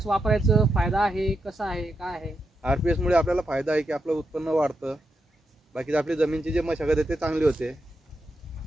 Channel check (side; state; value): both; normal; correlation 0.85